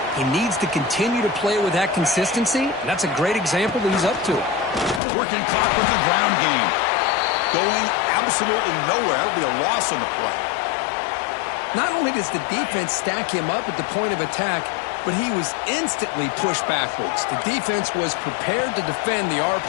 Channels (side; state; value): right; drops out; at 5.0 s